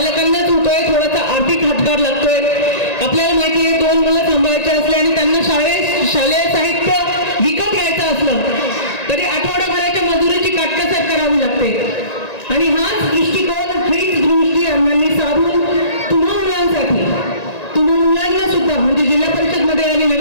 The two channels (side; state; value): right; late; 1.9 ms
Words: होतोय. थोडासा आर्थिक हातभार लागतोय. आपल्याला माहिती आहे 2 मुलं सांभाळायचे असले आणि त्यांना शालेय साहित्य विकत घ्यायचं असलं तरी आठवड्याभराच्या मजुरीची काटकसर करावी लागते. आणि हाच दृष्टिकोन, हीच दृष्टी अण्णांनी साधून तुम्हा मुलांना सुद्धा म्हणजे जिल्हा परिषदमध्ये आणि